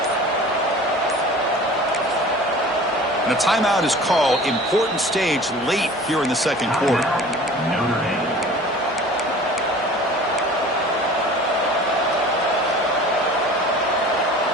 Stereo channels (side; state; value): both; normal; correlation 0.43